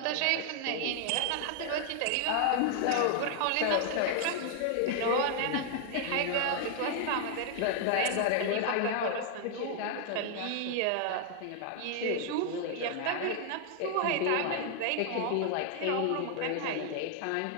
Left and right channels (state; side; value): different; both; correlation 0.00